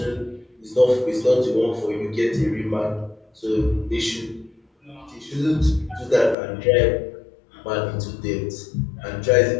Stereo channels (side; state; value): right; drops out; at 6.4 s